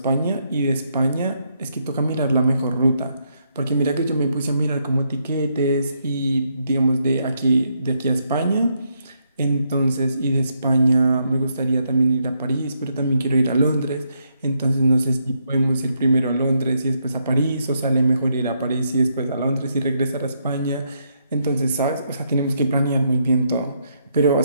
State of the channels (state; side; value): inverted; both; correlation -0.77